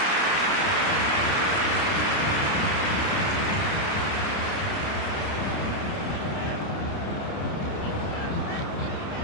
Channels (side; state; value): right; late; 29 ms